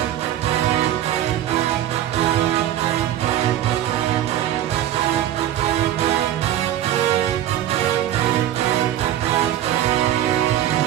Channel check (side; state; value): left; quieter; 12.1 dB